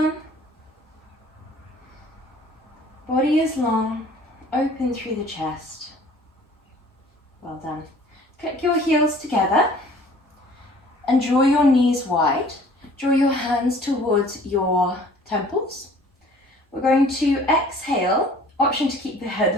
Body is long, open through the chest. Well done. Click your heels together and draw your knees wide. Draw your hands towards your temples. We're going to exhale, option to keep the head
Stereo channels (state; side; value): normal; both; correlation 0.52